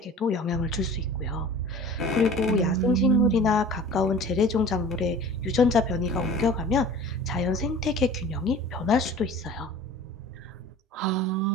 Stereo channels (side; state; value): both; normal; correlation 0.43